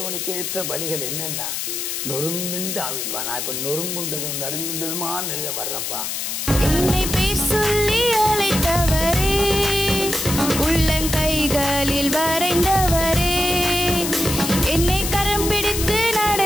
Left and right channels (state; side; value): noise; left; hiss, 3 dB below the sound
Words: ஏற்ற பலிகள் என்னென்னா நொறுங்குண்டு ஆவிப்பா. நான் இப்போ நொறுங்குண்டதும் நறுங்குண்டதுமா நெல்ல வர்றேன்ப்பா. என்னை பேர் சொல்லி அழைத்தவரே, உள்ளங்கைகளில் வரைந்தவரே, என்னை கரம் பிடித்து